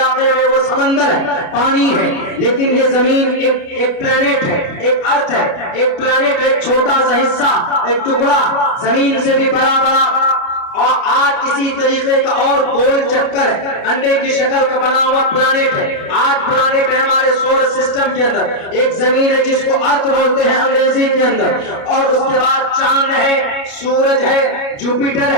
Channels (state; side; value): late; right; 29 ms